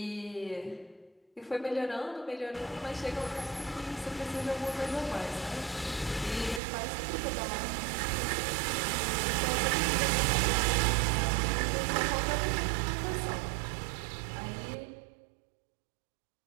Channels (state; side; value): drops out; left; at 6.6 s